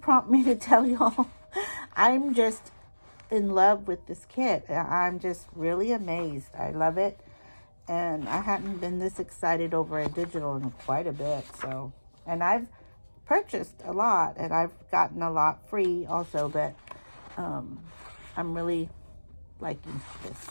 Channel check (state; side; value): inverted; both; correlation -1.00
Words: me to tell y'all. I'm just in love with this kit. I'm just really amazed. I love it. And I hadn't been this excited over a digital in quite a bit. So, and I've purchased a lot and I've gotten a lot free also, but I'm really liking this.